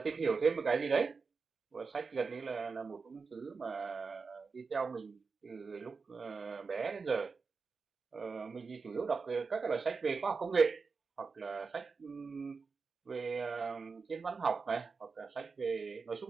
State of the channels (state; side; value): quieter; left; 4.8 dB